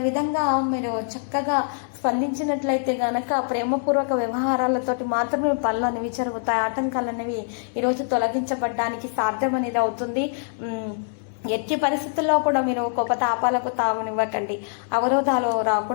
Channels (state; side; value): silent; right; 60 dB below the other